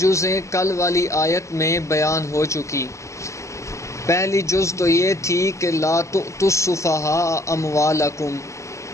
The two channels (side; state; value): right; late; 0.14 ms